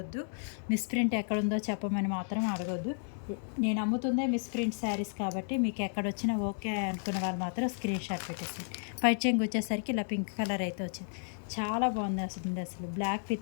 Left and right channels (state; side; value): silent; right; digital silence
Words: మిస్ప్రింట్ ఎక్కడుందో చెప్పమని మాత్రం అడగొద్దు. నేను అమ్ముతుందే మిస్ప్రింట్ శారీస్ కాబట్టి మీకు ఎక్కడొచ్చినా ఓకే అనుకున్న వాళ్ళు మాత్రం స్క్రీన్ షాట్ పెట్టేసింది. పైట్ చెంగు వచ్చేసరికి ఇలా పింక్ కలర్ అయితే వచ్చింది. చాలా బాగుంది అసలు black